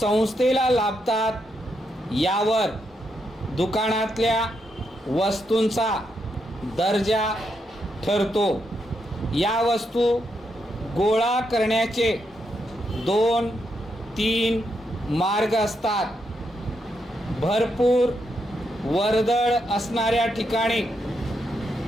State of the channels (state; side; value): normal; both; correlation 0.81